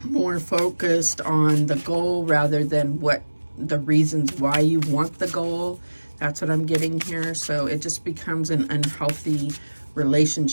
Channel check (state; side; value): inverted; both; correlation -1.00